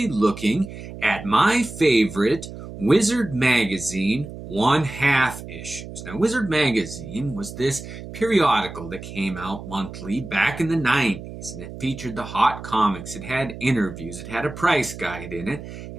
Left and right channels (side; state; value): right; noise; hum, 12 dB below the sound